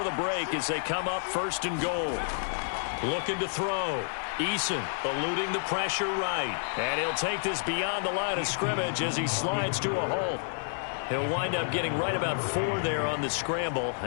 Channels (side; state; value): right; silent; digital silence